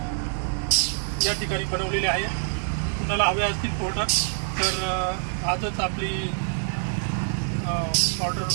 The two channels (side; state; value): left; silent; 61 dB below the other